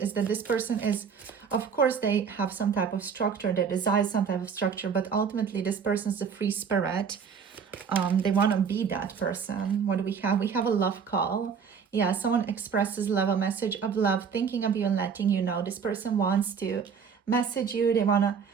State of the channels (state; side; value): quieter; left; 6.5 dB